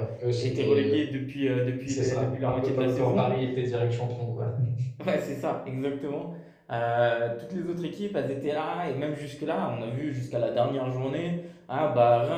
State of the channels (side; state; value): both; identical; correlation 1.00